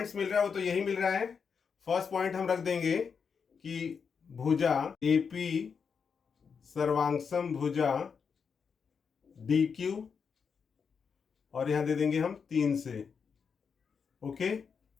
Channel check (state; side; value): quieter; right; 6.1 dB